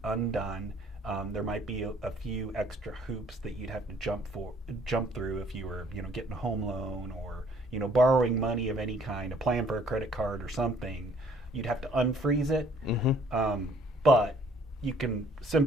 undone. There might be a few extra hoops that you'd have to jump through if you were getting a home loan, or borrowing money of any kind, applying for a credit card or something. You'd have to unfreeze it, but you can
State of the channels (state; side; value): normal; both; correlation 0.60